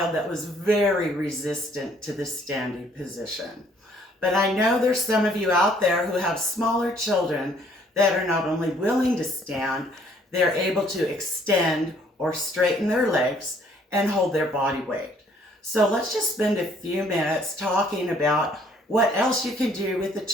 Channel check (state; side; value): normal; both; correlation 0.62